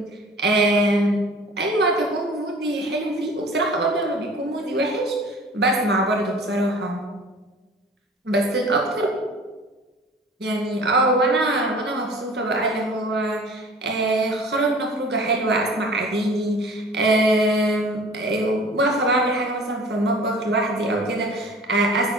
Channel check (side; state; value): both; normal; correlation 0.45